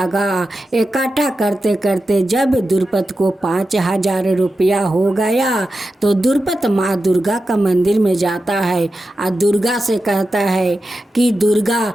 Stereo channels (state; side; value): normal; both; correlation 0.91